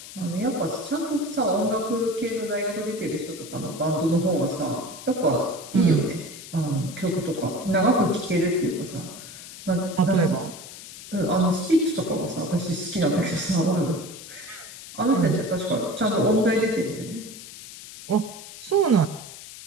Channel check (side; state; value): left; noise; hiss, 14 dB below the sound